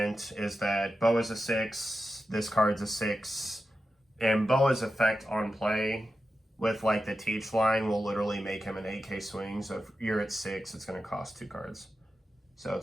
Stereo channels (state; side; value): normal; both; correlation 0.91